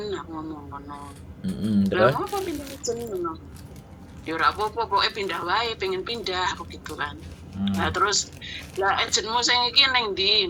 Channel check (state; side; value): identical; both; correlation 1.00